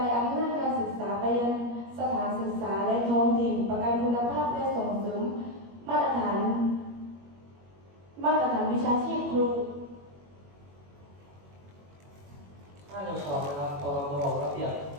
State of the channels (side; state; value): left; late; 21 ms